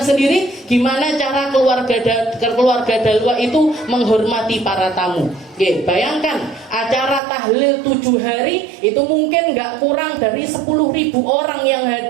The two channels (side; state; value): left; drops out; at 7.2 s